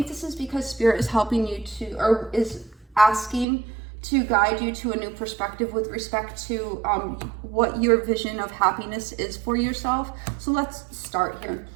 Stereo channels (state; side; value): drops out; left; at 3.5 s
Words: this is because Spirit is helping you to, or is asking to guide you to a new perspective with respect to what your vision of happiness is for yourself. So let's start here.